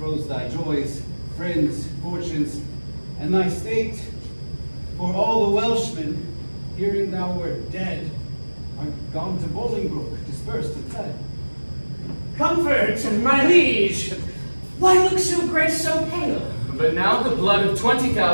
thy joys, friends, fortunes, and thy state. For all the Welshmen, hearing thou wert dead, are gone to Bolingbroke, dispersed and fled. Comfort, my liege. Why look so gray, so pale? But now the blood of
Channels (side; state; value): both; inverted; correlation -1.00